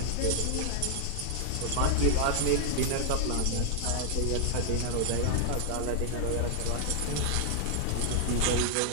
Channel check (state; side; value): different; both; correlation 0.00